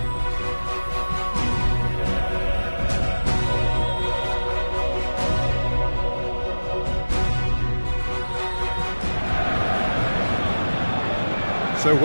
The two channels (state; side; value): inverted; both; correlation -1.00